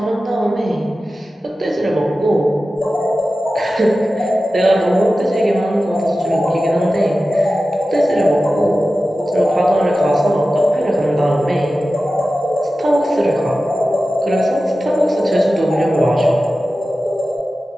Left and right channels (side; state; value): both; normal; correlation 0.94